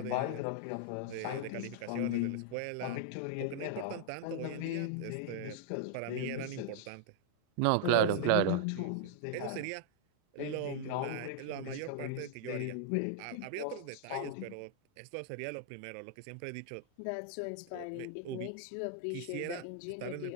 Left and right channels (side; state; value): both; different; correlation -0.01